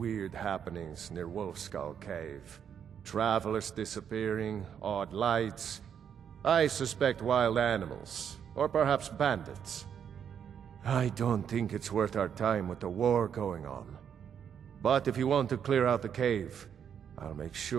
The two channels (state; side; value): quieter; left; 8.2 dB